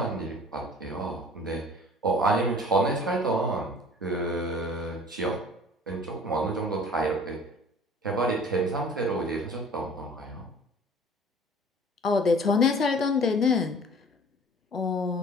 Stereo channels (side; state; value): both; normal; correlation 0.48